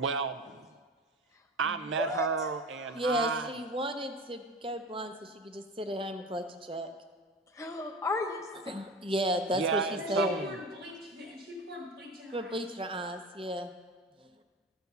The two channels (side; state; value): both; normal; correlation 0.30